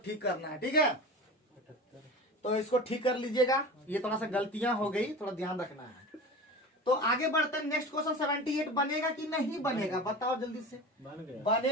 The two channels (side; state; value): both; normal; correlation 0.33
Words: ठीक करना है, ठीक है। तो इसको ठीक कर लीजिएगा, ये थोड़ा सा गलतियां हो गई, थोड़ा ध्यान रखना है। तो आगे बढ़ते हैं, नेक्स्ट क्वेश्चन 78 बनेगा कि नहीं बनेगा? बताओ जल्दी से। बन गया।